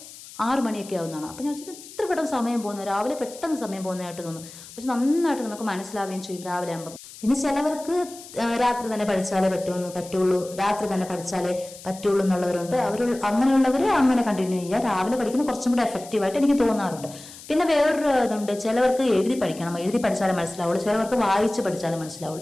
6 മണിയൊക്കെ ആവുന്നതാണ്. അപ്പം ഞാൻ വെച്ചാൽ ഇത്ര പെട്ടെന്ന് സമയം പോകുന്നു, രാവിലെ പെട്ടെന്ന് സമയം പോകുന്നതായിട്ട് തോന്നും. പക്ഷെ നന്നായിട്ട് നമുക്ക് മനസ്സിലാവുകയും ചെയ്യും രാവിലെ ആകുമ്പം. പിന്നെ ചിലവർക്ക് രാത്രി തന്നെ പഠിച്ചാലേ പറ്റുള്ളൂ, രാത്രി തന്നെ പഠിച്ചാലേ പറ്റുള്ളൂ എന്നുള്ളവരുണ്ട്. അങ്ങനെയുള്ളവർ അങ്ങനെ കണ്ടിന്യൂ ചെയ്യുക. രാവിലെ പഠിക്കുന്ന കുറച്ചും കൂടെ എഫക്റ്റീവായിട്ട് എനിക്ക് തോന്നാറുണ്ട്. പിന്നെ വേറൊരു ഇതുണ്ട്, ചിലവർക്ക് എഴുതി പഠിക്കണം, എഴുതി പഠിച്ചാലേ മനസ്സിലാവുള്ളൂ. ചിലവർക്ക് വായിച്ച് പഠിച്ചാലേ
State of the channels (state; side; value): noise; left; hiss, 17 dB below the sound